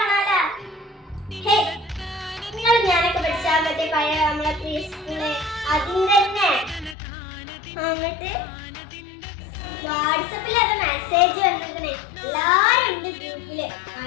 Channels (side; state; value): right; drops out; at 7.0 s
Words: നിങ്ങൾ ഞാനൊക്കെ പഠിച്ച മറ്റേ പഴയ നമ്മളെ പ്രീ സ്കൂള് അതിന്റെ തന്നെ. എന്നിട്ട് വാട്സപ്പിൽ അത് മെസ്സേജ് വന്നിരിക്കണേ. എല്ലാരും ഉണ്ട് ഗ്രൂപ്പില്.